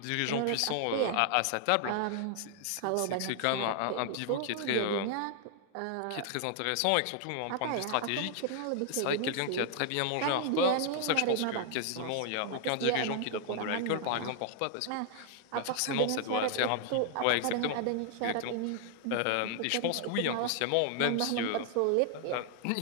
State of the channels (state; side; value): different; both; correlation 0.00